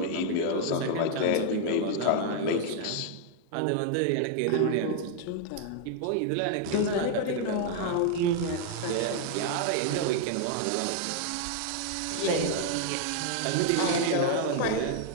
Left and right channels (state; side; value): different; both; correlation 0.00